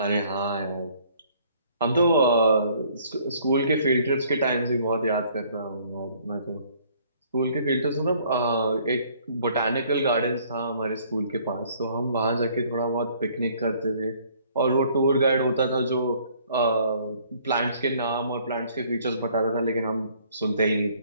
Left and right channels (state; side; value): inverted; both; correlation -0.60